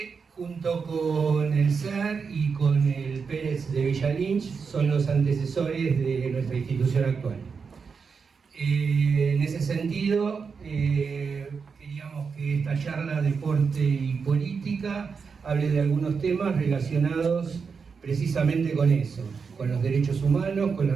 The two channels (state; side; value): quieter; left; 5.5 dB